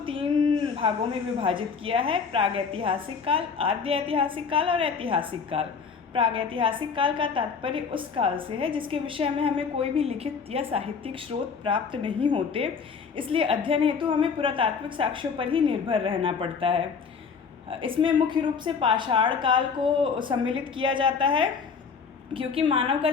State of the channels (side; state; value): right; quieter; 5.8 dB